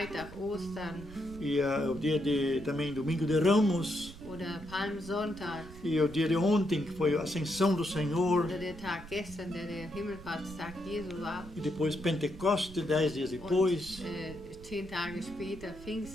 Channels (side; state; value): right; noise; rumble, 16 dB below the sound